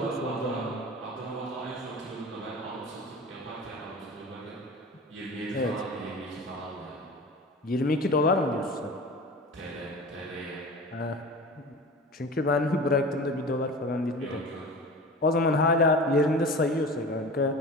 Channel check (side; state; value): both; normal; correlation 0.35